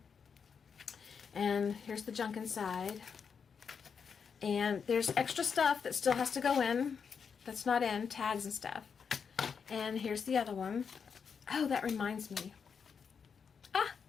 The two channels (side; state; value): right; quieter; 6.3 dB